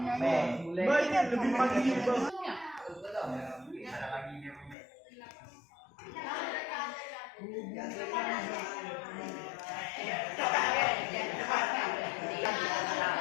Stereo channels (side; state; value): right; drops out; at 4.8 s